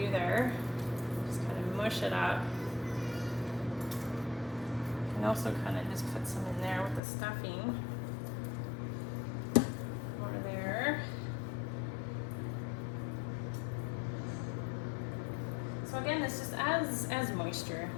there. Just kind of mush it up. And also kind of just put some in there with the stuffing. More there. So again, this just adds moisture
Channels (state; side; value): drops out; right; at 7.0 s